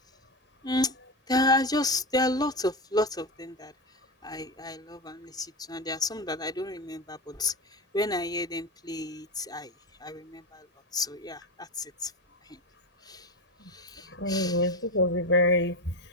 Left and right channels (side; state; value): both; normal; correlation 0.18